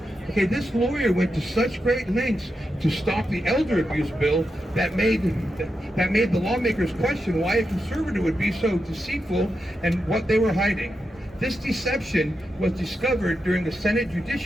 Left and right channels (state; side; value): normal; both; correlation 0.87